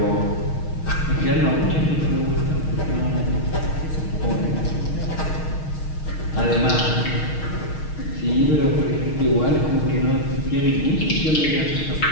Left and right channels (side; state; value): right; late; 6.4 ms